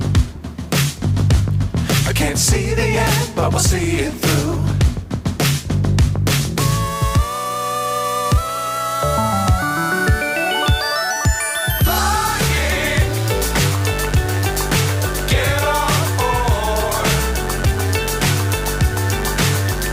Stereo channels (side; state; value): both; identical; correlation 1.00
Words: I can't see the end, but we'll see it through.